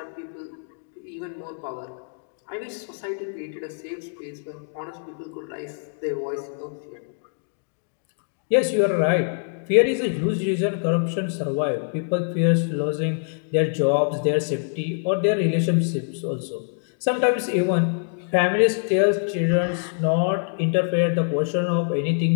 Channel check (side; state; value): right; silent; digital silence